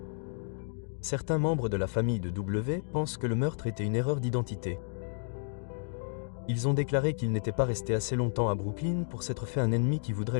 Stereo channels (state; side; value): silent; right; digital silence